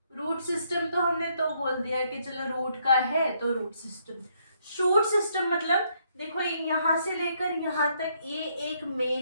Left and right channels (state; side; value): inverted; both; correlation -0.72